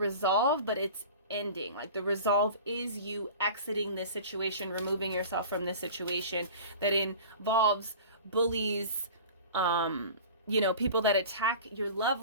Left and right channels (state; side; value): inverted; both; correlation -0.39